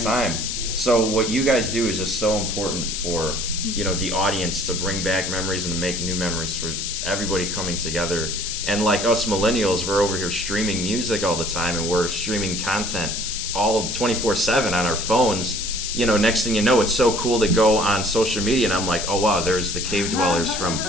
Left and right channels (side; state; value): left; noise; hiss, 3 dB below the sound